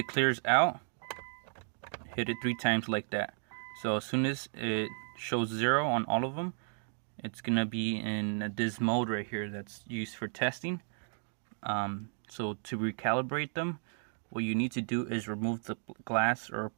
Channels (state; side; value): silent; left; 55 dB below the other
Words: clears out, hit it 3 times like that. So as soon as it shows 0 on all of them, it's gonna be in this mode right here that's used for testing. So to recalibrate them, what you need to do is remove the glass or